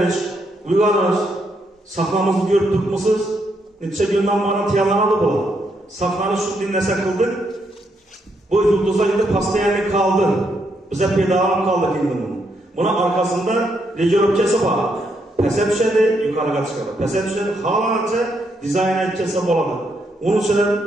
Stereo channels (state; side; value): normal; both; correlation 0.77